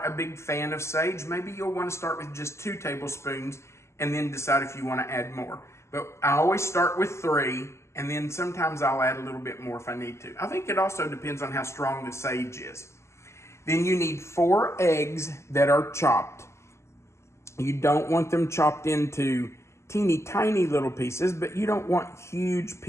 a big fan of sage, maybe you'll want to start with just 2 tablespoons and then decide if you want to add more. But I always start with 3, and then sometimes I'll add a little bit more if I need to. I think it also depends on how strong the sage is. Then you need 4 eggs that are chopped. You don't want them chopped into teeny tiny little pieces, but you don't want huge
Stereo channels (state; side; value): late; right; 0.13 ms